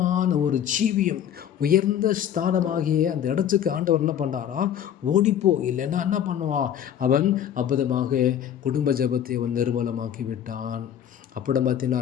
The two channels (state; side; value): quieter; right; 9.8 dB